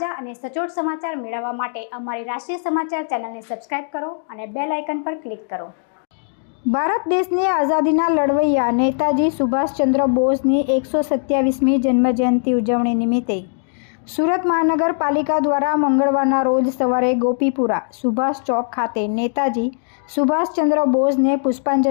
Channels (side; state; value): right; silent; digital silence